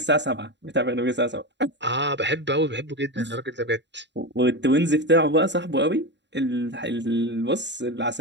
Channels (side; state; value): left; late; 0.52 ms